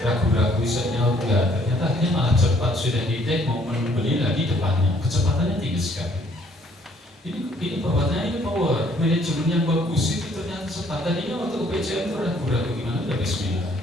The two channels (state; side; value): normal; both; correlation 0.63